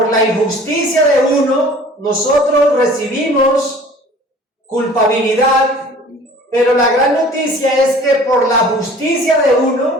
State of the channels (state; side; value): normal; both; correlation 0.48